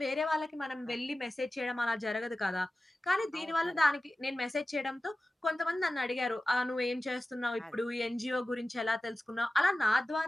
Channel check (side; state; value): both; normal; correlation 0.95